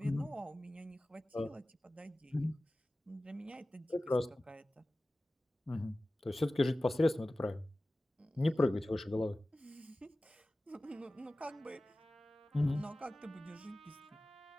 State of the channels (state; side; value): normal; both; correlation 0.96